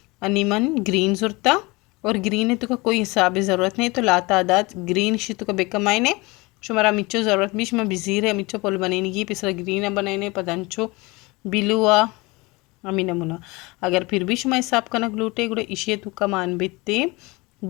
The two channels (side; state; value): right; quieter; 24.3 dB